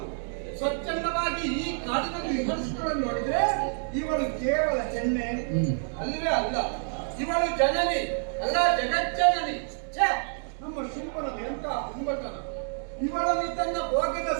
ಸ್ವಚ್ಛಂದವಾಗಿ ಈ ಕಾಡಿನಲ್ಲಿ ವಿಮರ್ಶಿಸಿಕೊಂಡು ನೋಡಿದ್ರೆ ಇವಳು ಕೇವಲ ಹೆಣ್ಣೆ ಅಲ್ಲವೇ ಅಲ್ಲ, ಇವಳು ಜನನಿ ಅಲ್ಲ, ಜಗಜ್ಜನನಿ. ಛೇ, ನಮ್ಮ ಶುಂಭನದು ಎಂತ ಹುಂಬತನ! ಇವಳನ್ನು ತನ್ನ ಭೋಗದ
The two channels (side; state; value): left; silent; 59 dB below the other